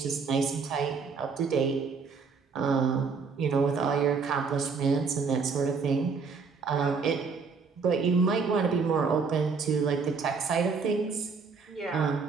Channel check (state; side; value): quieter; left; 5.1 dB